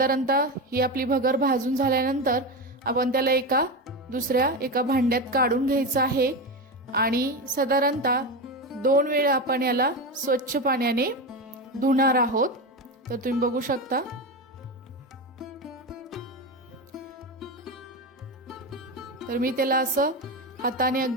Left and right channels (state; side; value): normal; both; correlation 0.18